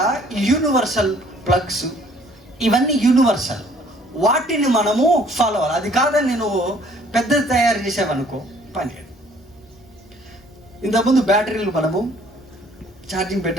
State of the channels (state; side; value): normal; both; correlation 0.58